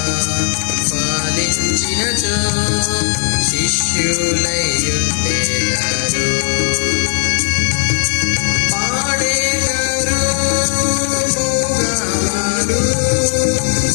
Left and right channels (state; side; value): silent; right; digital silence